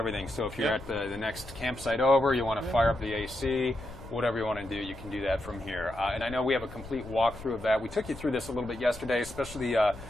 So if you're at the next campsite over, you want to fire up the AC, whatever you want to do, you can do that from here. And I know we have a complete walkthrough of that. We took you through this a little bit yesterday, especially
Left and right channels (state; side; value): noise; left; rumble, 15 dB below the sound